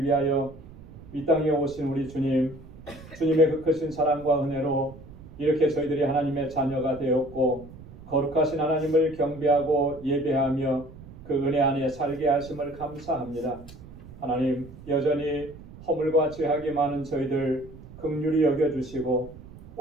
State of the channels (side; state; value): right; noise; rumble, 18 dB below the sound